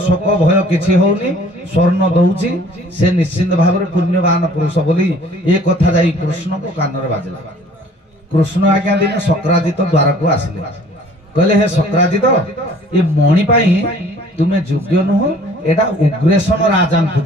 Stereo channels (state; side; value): normal; both; correlation 0.53